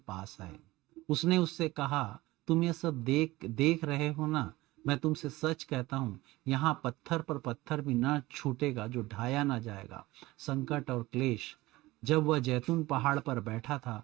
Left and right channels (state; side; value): quieter; left; 19.1 dB